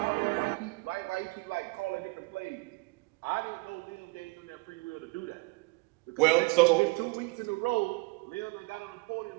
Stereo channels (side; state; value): left; quieter; 26.9 dB